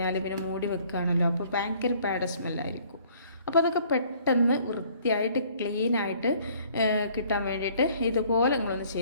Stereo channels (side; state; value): both; inverted; correlation -0.58